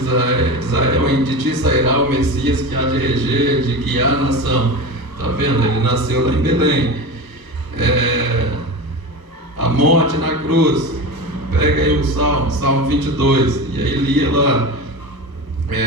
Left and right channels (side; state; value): left; late; 1.2 ms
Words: Israel, de ti sairá o Messias que há de reger, de guiar a nação. Tá vendo? Ele nasceu lá em Belém. A morte na cruz. Pega aí o Salmo 22, e aí lia lá,